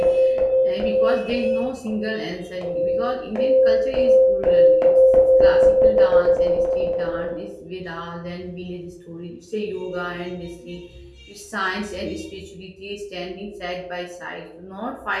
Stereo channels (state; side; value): identical; both; correlation 1.00